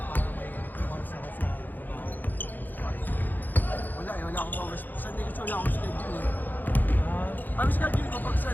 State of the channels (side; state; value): right; late; 0.086 ms